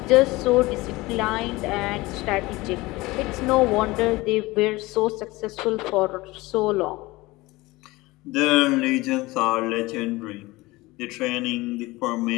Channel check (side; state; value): right; quieter; 20.9 dB